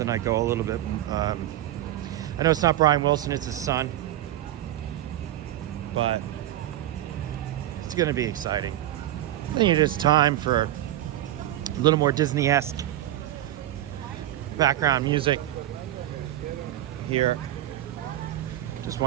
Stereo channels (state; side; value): quieter; left; 13.5 dB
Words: I go a little bit. I know it's not Brian Wilson, it's his son, but it's going to be exciting. I think it is time for a little more Disney-esque background music here. Just